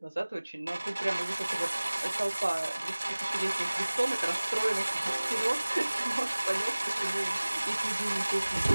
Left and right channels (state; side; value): inverted; both; correlation -1.00